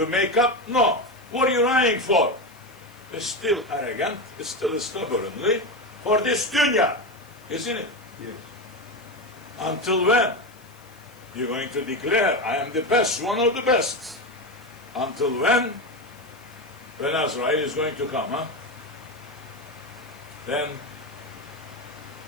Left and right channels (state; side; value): noise; left; hiss, 27 dB below the sound